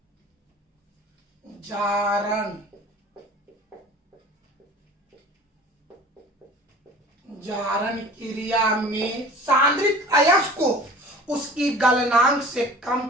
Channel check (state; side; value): normal; both; correlation 0.42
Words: जारण क्रिया में सांद्रित अयस्क को उसकी गलनांक से कम